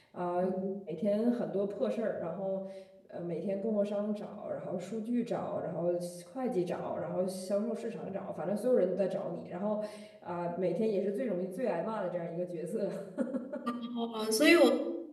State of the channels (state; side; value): identical; both; correlation 1.00